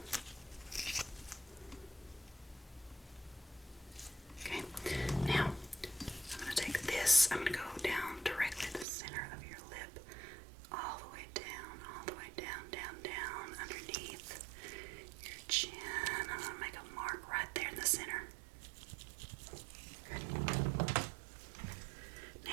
Okay, now I'm going to take this, I'm going to go down directly to the center of your lip, all the way down, underneath your chin. I'm going to make a mark right there in the center. Good.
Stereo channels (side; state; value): left; drops out; at 8.8 s